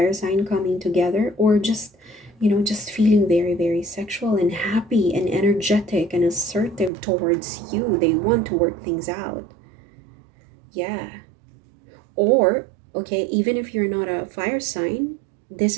sign coming together, or just, just feeling very, very sexual and happy and energetic and assertive towards you. They want to work things out. Yeah. Or, okay, even if you're not a fire sign, this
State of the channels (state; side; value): drops out; left; at 6.9 s